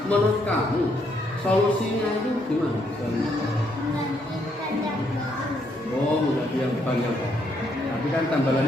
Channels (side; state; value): both; normal; correlation 0.73